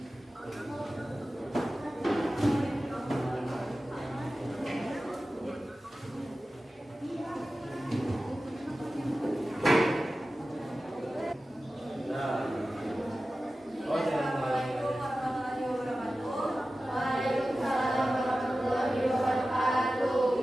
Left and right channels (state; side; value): normal; both; correlation 0.95